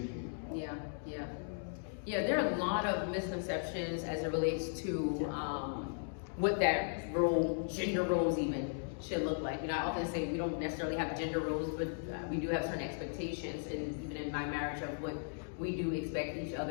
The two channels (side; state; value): right; silent; digital silence